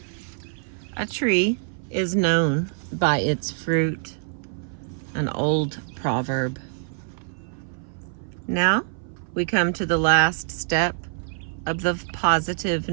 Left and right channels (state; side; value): silent; left; 57 dB below the other